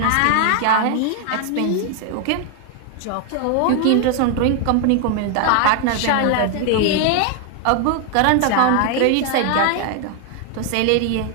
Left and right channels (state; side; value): different; both; correlation 0.00